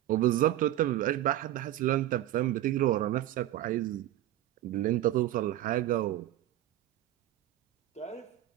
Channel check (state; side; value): quieter; left; 13.9 dB